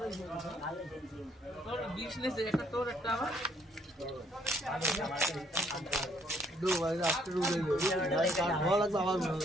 তোর বিজনেস একটা তোর একটা আমার দো ভাই আজকে রুই ভাই কার ভালো লাগবে আমার ভালো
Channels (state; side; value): normal; both; correlation 0.67